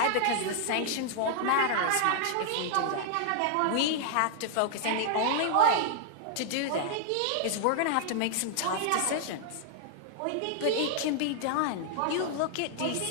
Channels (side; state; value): both; different; correlation 0.00